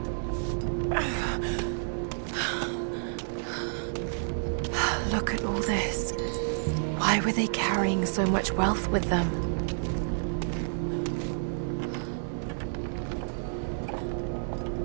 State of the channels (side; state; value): left; silent; digital silence